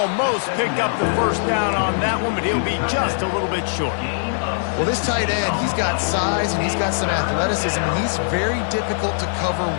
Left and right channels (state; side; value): silent; right; digital silence